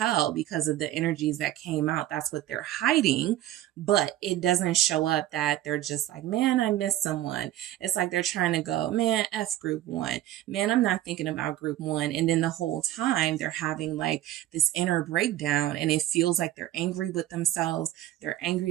because of the energies that came out. That's what they're hiding, but it doesn't show up that they're just like, man, I miss someone. It's like they're trying to go, man, F group one, man, I'm not thinking about group one. And then the whole time they're having like like this inner breakdown, and it feels like they're angry with themselves. They're angry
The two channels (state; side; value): quieter; left; 13.7 dB